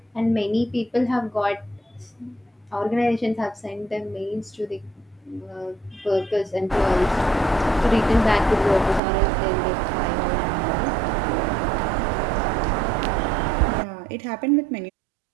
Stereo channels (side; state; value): left; drops out; at 9.0 s